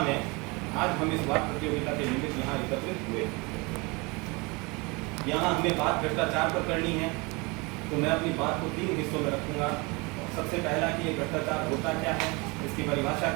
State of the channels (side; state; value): left; quieter; 27.2 dB